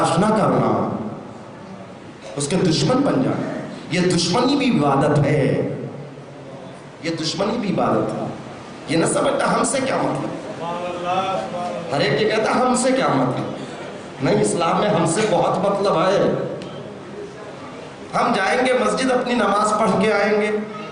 نہ کرنا، اس کے دشمن بن جانا. یہ دشمنی بھی عبادت ہے، یہ دشمنی بھی عبادت ہے. یہ نہ سمجھتا ہم سے کیا مطلب، ہر ایک یہ کہتا ہم سے کیا مطلب. نہیں، اسلام میں ہم سے بہت مطلب ہے. ہم جائیں گے مسجد، اپنی نماز پڑھ کے آئیں گے،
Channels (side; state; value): both; identical; correlation 1.00